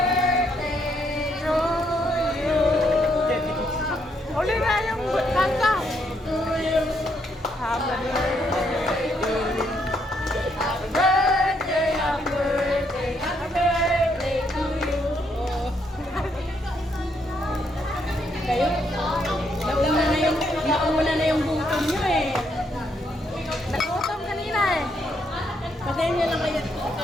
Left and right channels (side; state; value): both; normal; correlation 0.74